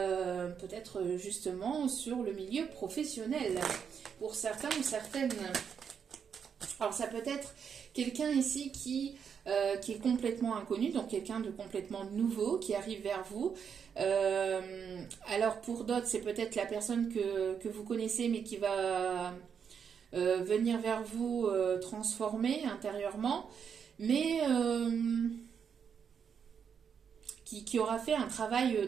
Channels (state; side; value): quieter; left; 7.1 dB